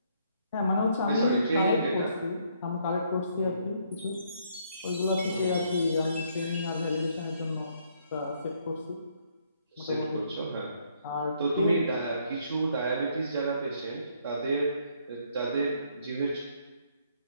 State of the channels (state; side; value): inverted; both; correlation -0.69